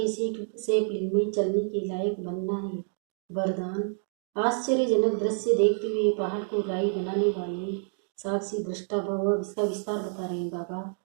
सेपलिंग में चलने के लायक बनना है। वरदान आश्चर्यजनक दृश्य देखते हुए पहाड़ को राई बनाने वाले साक्षी दृष्टा भव। इसका विस्तार बता रहे हैं बाबा।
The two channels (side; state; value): left; silent; 59 dB below the other